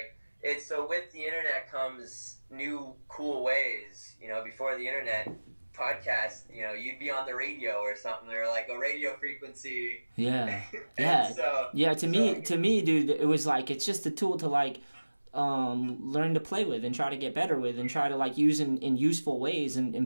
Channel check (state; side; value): inverted; both; correlation -1.00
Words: so with the internet comes new cool ways. You know, before the internet, podcast, you know, you'd be on the radio or something, or like a radio frequency. Yeah. To me, dude, it was like it's just a tool to like learn to play with and try to get better with and try to like use in useful ways